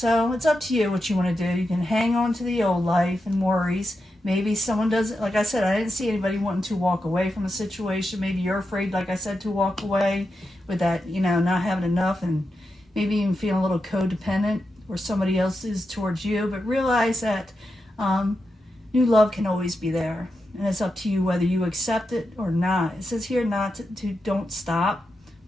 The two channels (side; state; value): both; normal; correlation 0.88